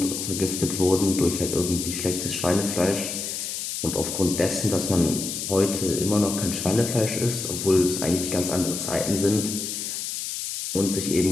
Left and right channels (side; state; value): left; noise; hiss, 4 dB below the sound